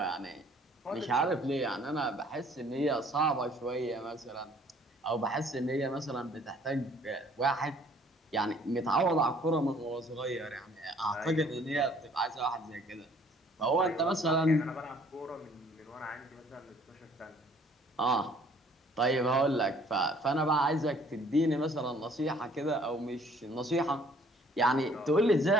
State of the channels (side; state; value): both; normal; correlation 0.58